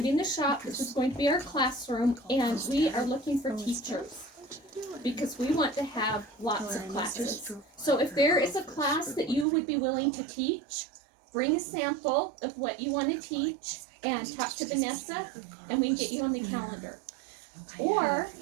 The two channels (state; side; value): drops out; left; at 9.5 s